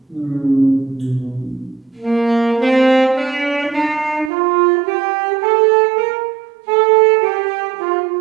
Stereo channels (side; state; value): left; drops out; at 4.3 s